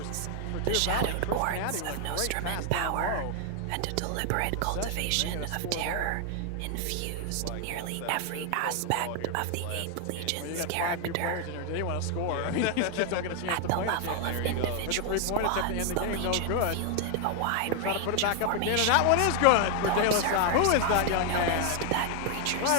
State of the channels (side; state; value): both; different; correlation 0.00